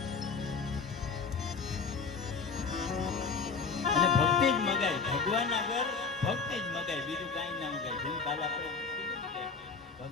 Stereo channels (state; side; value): quieter; right; 5.1 dB